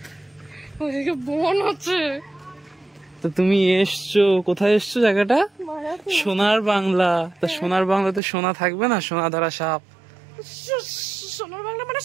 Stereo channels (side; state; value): left; drops out; at 8.2 s